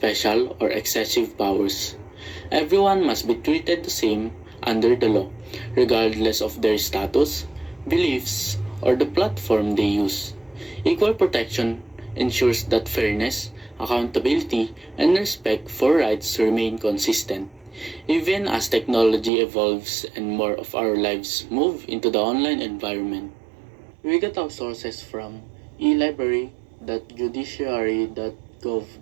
or excessive powers. Everyone must be treated the same under the law, regardless of their status, beliefs, or the platform they use. Equal protection ensures that fairness, accountability, and respect for rights remain consistent. Even as technology evolves and more of our lives move into the online environment. We get our sources from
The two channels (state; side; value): drops out; left; at 19.3 s